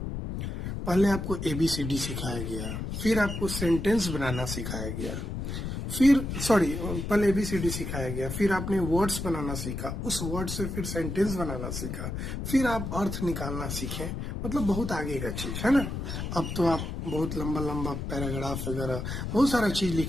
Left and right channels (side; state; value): left; noise; rumble, 4 dB below the sound